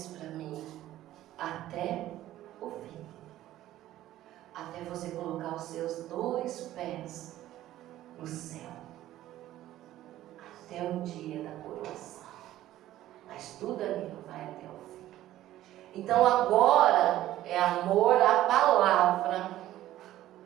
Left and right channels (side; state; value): left; quieter; 14.0 dB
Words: para mim: até o fim. Até você colocar os seus 2 pés no céu. Até o dia da coroação. Mas tudo ali vai até o fim. Então agora é amor à palavra.